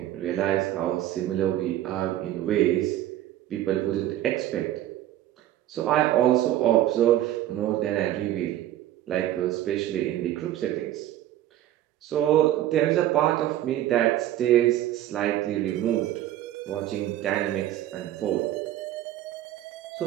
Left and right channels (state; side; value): quieter; left; 13.1 dB